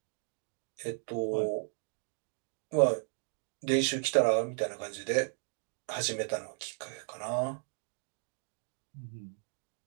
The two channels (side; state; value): left; silent; 54 dB below the other